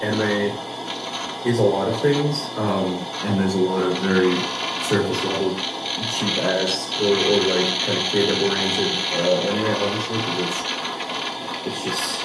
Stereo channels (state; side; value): identical; both; correlation 1.00